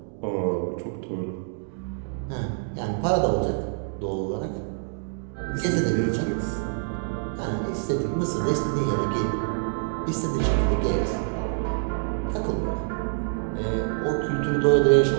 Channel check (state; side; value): silent; left; digital silence